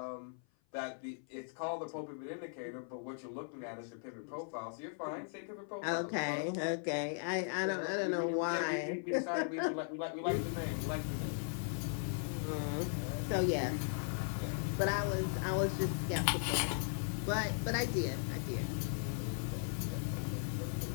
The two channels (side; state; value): right; silent; 52 dB below the other